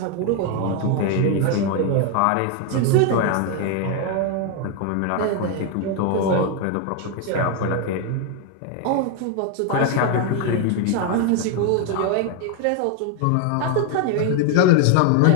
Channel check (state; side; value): different; both; correlation 0.01